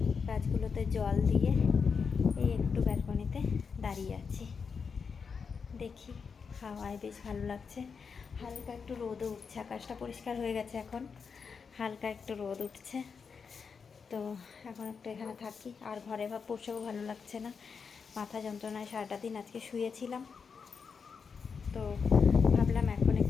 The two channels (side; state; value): right; quieter; 5.7 dB